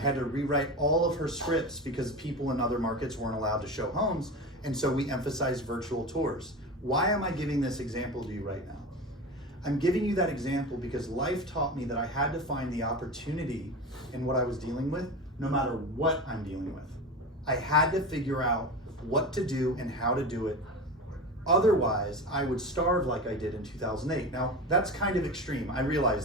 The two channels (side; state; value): both; normal; correlation 0.27